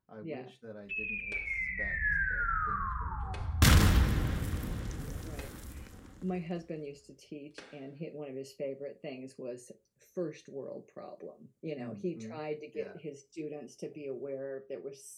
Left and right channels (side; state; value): both; identical; correlation 1.00